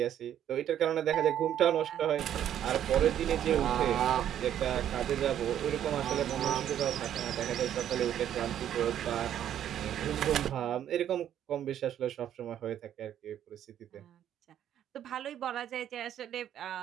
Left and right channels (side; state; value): left; quieter; 10.5 dB